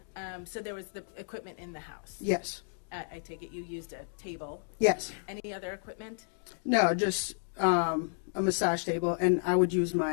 So there was the equipment in the house? Yes. I take it you used a table? Yes. Any other equipment? No, just a massage table, and I would use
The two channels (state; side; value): silent; right; digital silence